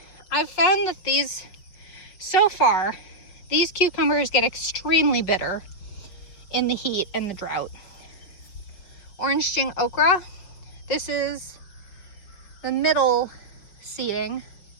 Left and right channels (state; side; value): late; right; 5.7 ms